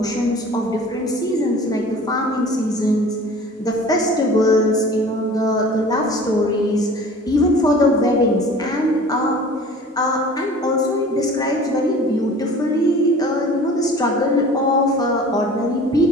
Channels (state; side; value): normal; both; correlation 0.44